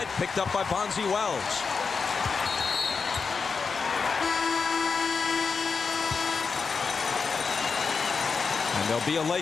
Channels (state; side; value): quieter; right; 5.2 dB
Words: picked up by Bonzi Wells. And there'll be a